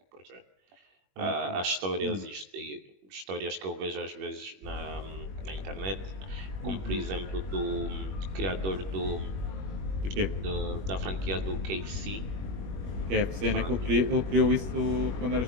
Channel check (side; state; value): left; late; 21 ms